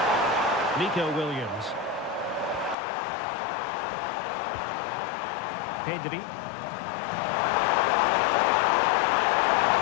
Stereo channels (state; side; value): drops out; right; at 2.8 s